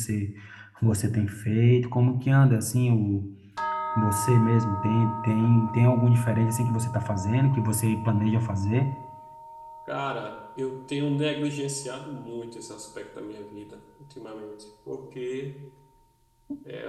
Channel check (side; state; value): both; identical; correlation 1.00